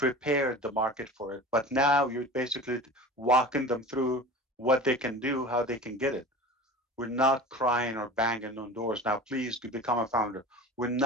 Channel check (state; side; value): normal; both; correlation 0.36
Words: the market for it. But now you're basically walking them through what they can do, how they can get it. We're not crying or banging on doors. Now, please to become a founder. We're